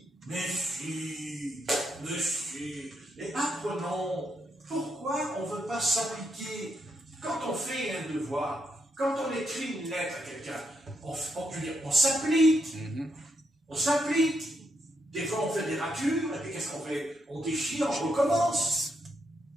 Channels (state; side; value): normal; both; correlation 0.79